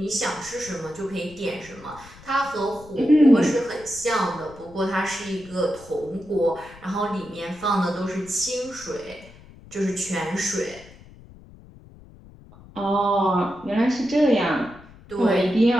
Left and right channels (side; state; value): left; noise; rumble, 21 dB below the sound